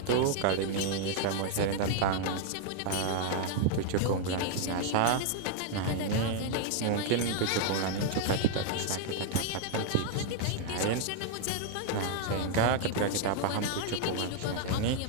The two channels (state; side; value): different; both; correlation 0.00